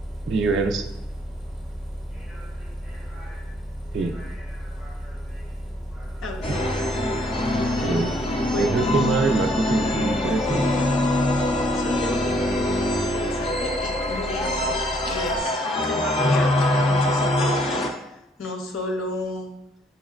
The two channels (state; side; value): normal; both; correlation 0.66